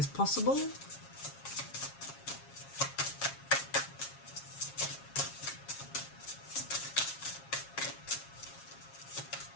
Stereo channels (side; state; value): right; late; 7.3 ms